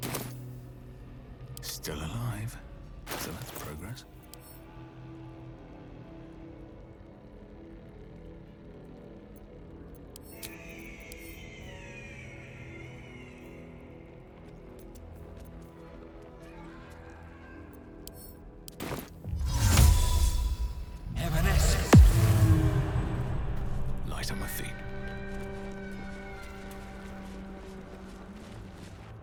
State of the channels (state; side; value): identical; both; correlation 1.00